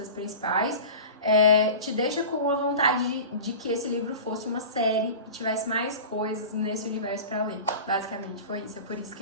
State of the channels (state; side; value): inverted; both; correlation -0.35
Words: principais. Te deixa com a vontade de que esse livro fosse uma série e tivesse mais coisas nesse universo pra ler. Basicamente foi isso. É por isso que